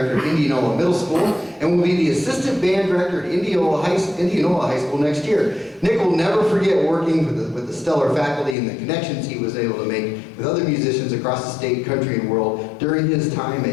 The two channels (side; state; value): right; drops out; at 8.6 s